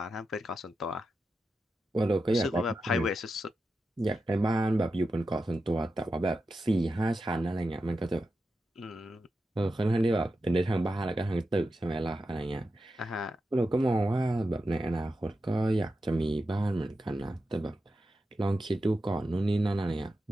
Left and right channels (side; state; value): both; normal; correlation 0.90